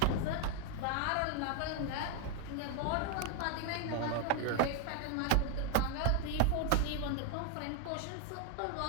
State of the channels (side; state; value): both; different; correlation 0.00